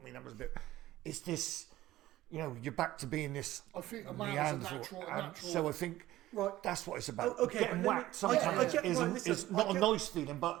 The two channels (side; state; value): left; quieter; 15.6 dB